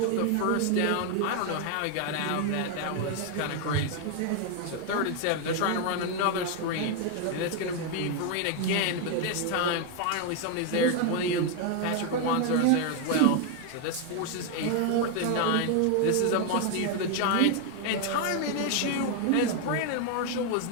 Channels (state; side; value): different; both; correlation 0.01